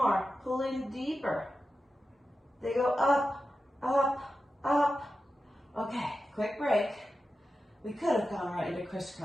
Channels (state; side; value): normal; both; correlation 0.92